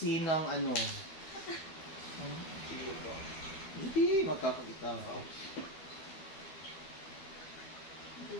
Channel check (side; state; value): right; late; 12 ms